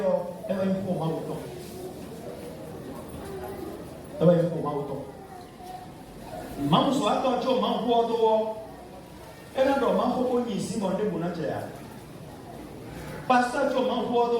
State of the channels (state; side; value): identical; both; correlation 1.00